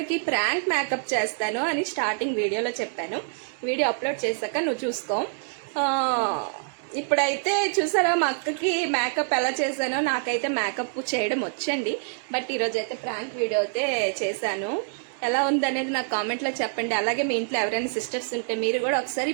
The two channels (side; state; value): left; silent; digital silence